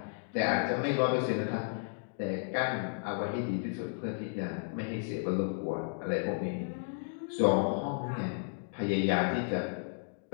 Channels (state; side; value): silent; right; digital silence